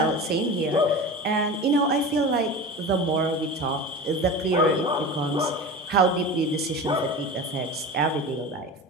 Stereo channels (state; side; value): normal; both; correlation 0.31